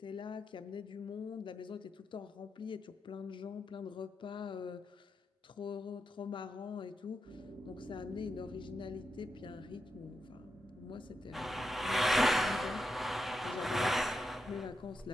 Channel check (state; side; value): normal; both; correlation 0.86